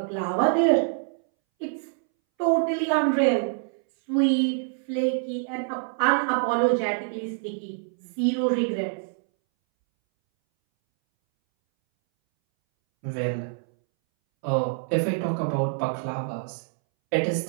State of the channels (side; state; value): left; silent; 61 dB below the other